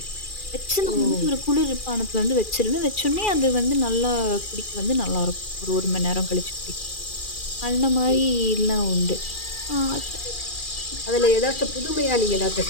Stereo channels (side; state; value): right; late; 2.4 ms